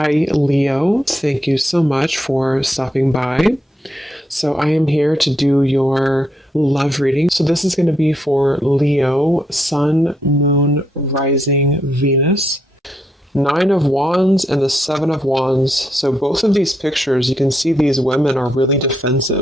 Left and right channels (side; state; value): both; normal; correlation 0.78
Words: Leo. Thank you so much for stopping by. So, I am here to do your love reading. So, this is going to be for Leo, Sun, Moon, Rising, Venus. Nine of Wands and the Seven of Wands. So both of these pictures, you can see these women are really